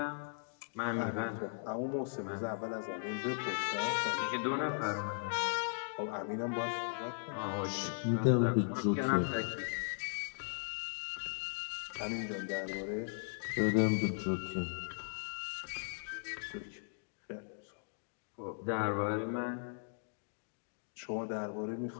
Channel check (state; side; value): silent; right; digital silence